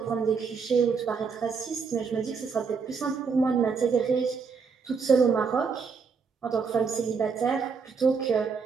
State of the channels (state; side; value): quieter; left; 5.5 dB